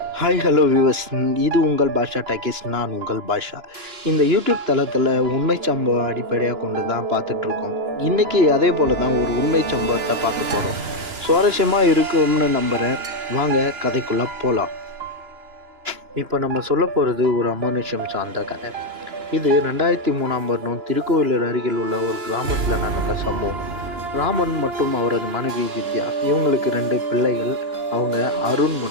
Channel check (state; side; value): late; left; 2.9 ms